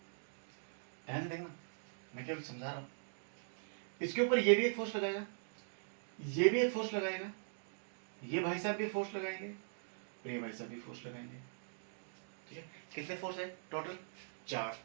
ध्यान देखना, मैं केवल समझा रहा हूं. इसके ऊपर ये भी एक फोर्स लगाएगा, ये भी एक फोर्स लगाएगा, ये भाई साहब भी फोर्स लगाएंगे और ये भाई साहब भी फोर्स लगाएंगे. ठीक है, कितने फोर्स है टोटल? 4.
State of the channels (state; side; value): silent; left; digital silence